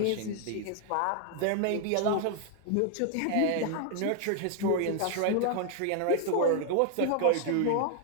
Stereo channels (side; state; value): both; different; correlation 0.00